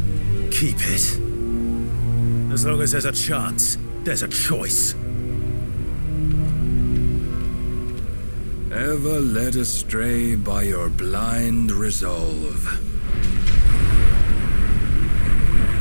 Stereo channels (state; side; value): inverted; both; correlation -1.00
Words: Keep it. As long as there's a chance, there's a choice. Ever led astray by your blind resolve.